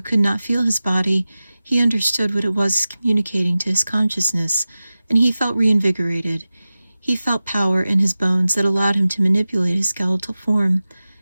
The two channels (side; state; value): both; inverted; correlation -0.96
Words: could not feel his body, he understood what it was communicating to his consciousness, and he felt reinvigorated. He felt power in his bones that allowed him to manipulate his skeletal form